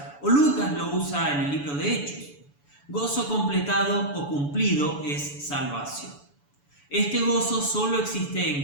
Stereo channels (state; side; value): late; right; 7.0 ms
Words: o Lucas lo usa en el libro de Hechos. Gozo completado o cumplido es salvación. Este gozo solo existe